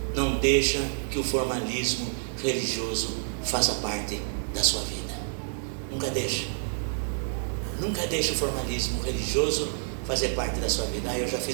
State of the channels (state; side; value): silent; left; digital silence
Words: não deixa que o formalismo religioso faça parte da sua vida. Nunca deixa. Nunca deixa o formalismo religioso fazer parte da sua vida. Eu já